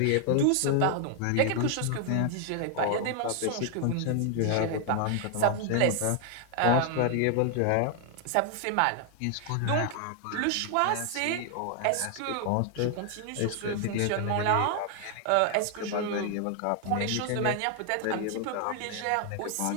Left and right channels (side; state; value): both; different; correlation 0.00